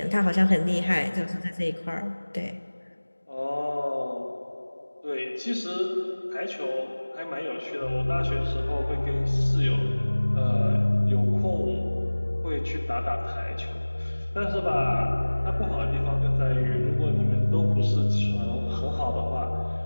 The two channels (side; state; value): both; inverted; correlation -1.00